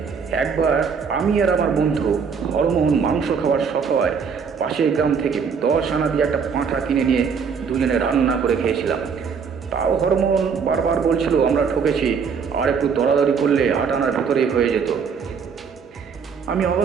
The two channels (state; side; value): quieter; left; 6.1 dB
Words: একবার আমি আর আমার বন্ধু হরমোহন মাংস খাওয়ার শখ হয় পাশের গ্রাম থেকে 10 আনা দিয়ে একটা পাঁঠা কিনে নিয়ে দুজনে রান্না করে খেয়েছিলাম। তাও হরমোহন বারবার বলছিল আমরা ঠকেছি, আর একটু দরাদরি করলে 8 আনার ভেতরেই হয়ে যেত। আমি